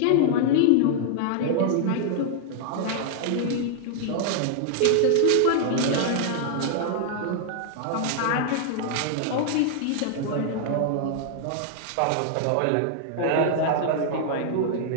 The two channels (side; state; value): both; different; correlation -0.01